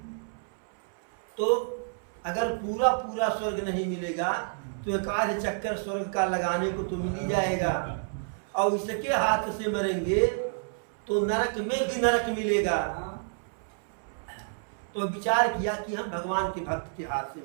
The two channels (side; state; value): left; silent; 58 dB below the other